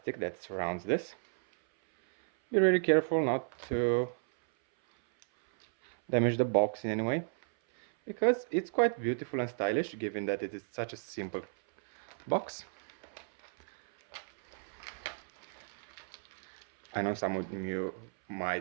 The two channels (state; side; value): silent; left; 55 dB below the other